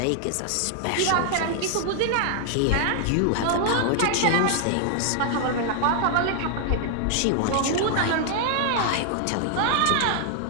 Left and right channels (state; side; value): different; both; correlation 0.00